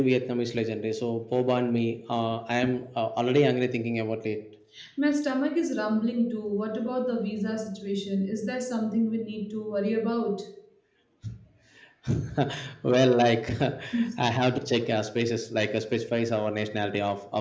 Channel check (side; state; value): both; identical; correlation 1.00